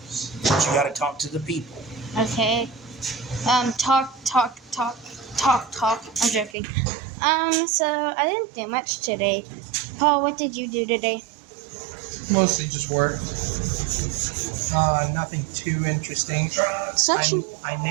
But you got to talk to the people. Okay. Talk. I'm joking. So I didn't do much today. Paul, what did you do today? Mostly just work. Nothing too interesting. I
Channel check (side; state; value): left; drops out; at 6.6 s